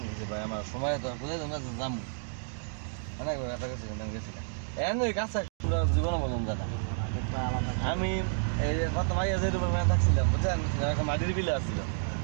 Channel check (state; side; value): silent; left; digital silence